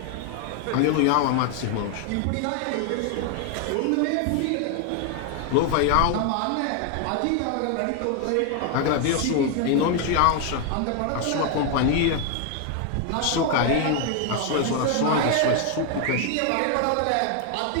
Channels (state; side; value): different; both; correlation 0.01